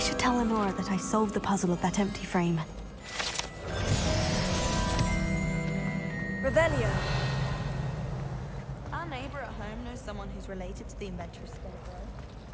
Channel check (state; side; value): identical; both; correlation 1.00